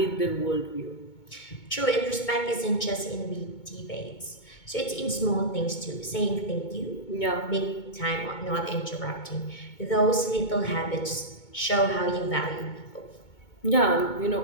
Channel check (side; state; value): right; late; 2.2 ms